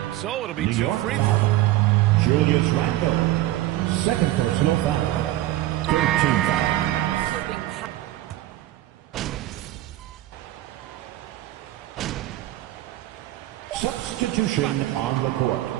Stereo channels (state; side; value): quieter; left; 15.3 dB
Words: So it'll be 2 free throws. Julius Randle. Second personal foul. 13 foul. Substitution on the court.